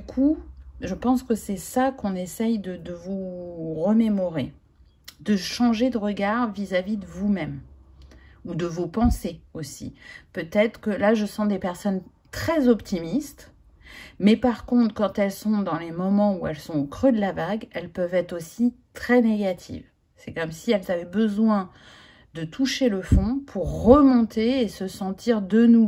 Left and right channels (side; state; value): both; identical; correlation 1.00